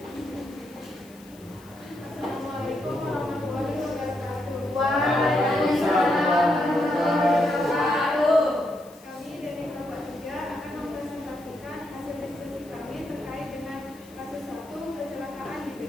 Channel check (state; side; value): noise; left; hiss, 25 dB below the sound